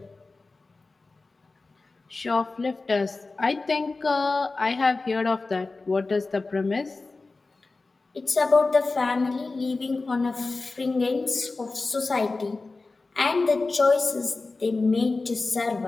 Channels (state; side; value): quieter; right; 3.6 dB